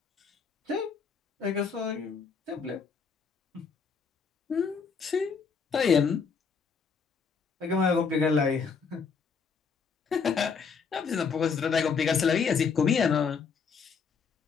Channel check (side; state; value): right; quieter; 5.6 dB